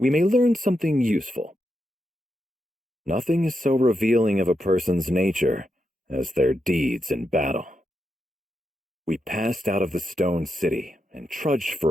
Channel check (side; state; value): both; normal; correlation 0.85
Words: may learn something useful. Nothing is so revealing of a person's nature as their deeds in battle. We passed out of the stone city and trudged